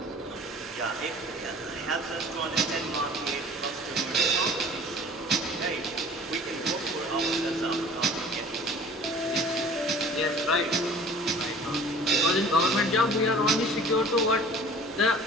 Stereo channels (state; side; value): normal; both; correlation 0.46